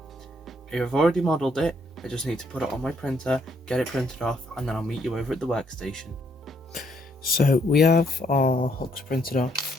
I've already modelled it, I just need to put it on my printer, get it printed off, and then I'll meet you over at the workstation. So we have our hooks printed off,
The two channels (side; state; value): both; normal; correlation 0.70